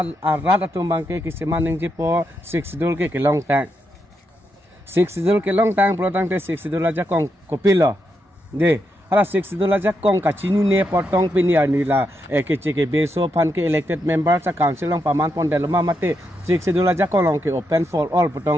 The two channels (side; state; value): both; normal; correlation 0.82